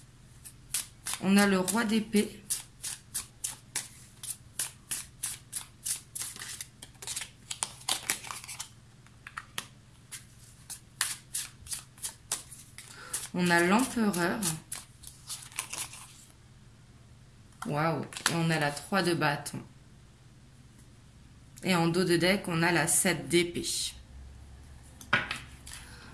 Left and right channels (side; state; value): both; identical; correlation 1.00